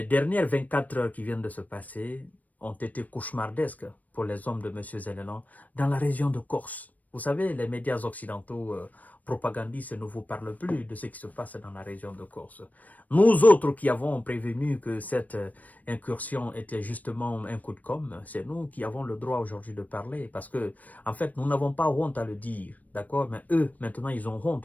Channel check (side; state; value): right; late; 0.075 ms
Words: dernières 24 heures qui viennent de se passer ont été cauchemardesques pour les hommes de M. Zelensky dans la région de Corse. Vous savez, les médias occidentaux propagandistes ne vous parlent plus de ce qui se passe dans la région de Corse. Nous autres qui avons prévenu que cette incursion était justement un coup de com', c'est nous qui avons le droit aujourd'hui de parler parce que, en fait, nous n'avons pas honte à le dire, d'accord? Mais eux, maintenant, ils ont